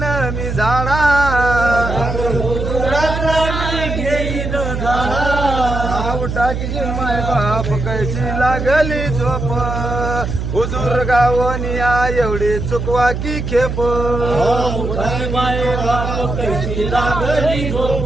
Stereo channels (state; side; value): noise; right; hum, 4 dB below the sound